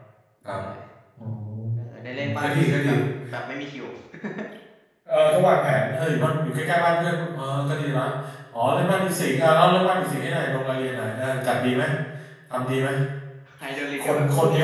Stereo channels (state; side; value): identical; both; correlation 1.00